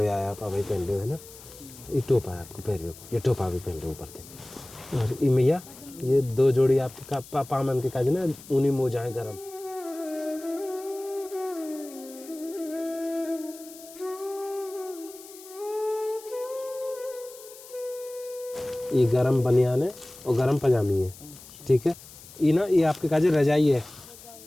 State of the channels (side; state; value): left; noise; hiss, 18 dB below the sound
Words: यार आप अभी पहन लो है ना, ये टोपा है आपको पैर को, ये टोपा भी पहन लो ऊपर से। और ये मैया ये 2 जोड़ी आपके पामन के काजे ना ऊनी मोजा है गरम। ये गरम बनियान है और गरम पजामी है, ठीक है। ये ना ये आपके काजे रजाई है,